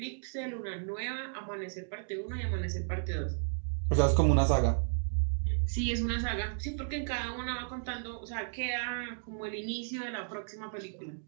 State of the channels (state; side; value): silent; left; digital silence